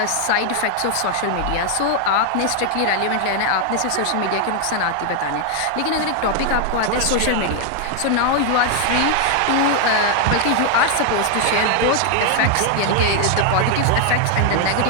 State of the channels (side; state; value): both; different; correlation 0.00